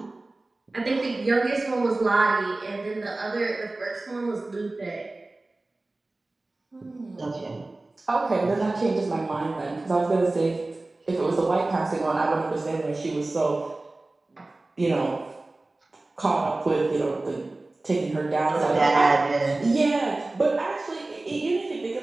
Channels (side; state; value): left; quieter; 3.0 dB